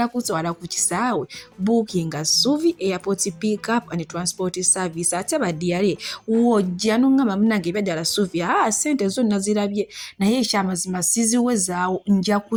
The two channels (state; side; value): identical; both; correlation 1.00